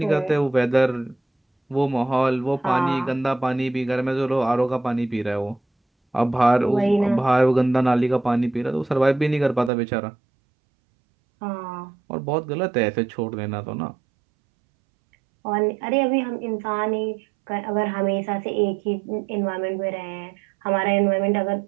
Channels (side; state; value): left; drops out; at 9.7 s